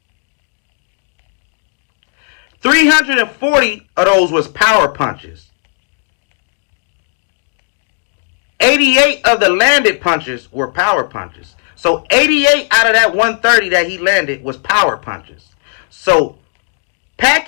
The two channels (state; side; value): silent; right; 58 dB below the other